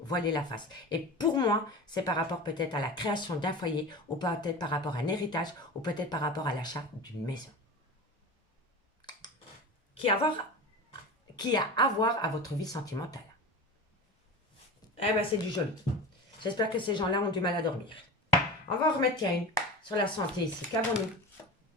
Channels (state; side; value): normal; both; correlation 0.30